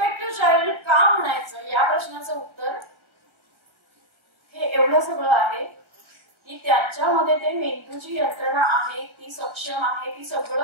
टू चाइल्ड का म्हणायचं या प्रश्नाचं उत्तर हे एवढं सगळं आहे की त्यांच्यामध्ये ते मेंदूची यंत्रणा आहे, ती सक्षम आहे, ती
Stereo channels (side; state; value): left; late; 1.4 ms